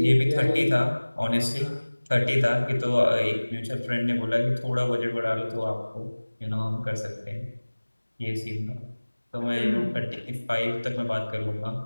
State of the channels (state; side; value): inverted; both; correlation -1.00